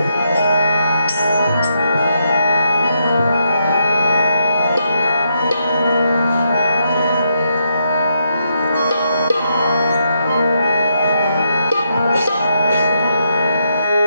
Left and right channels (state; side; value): inverted; both; correlation -0.79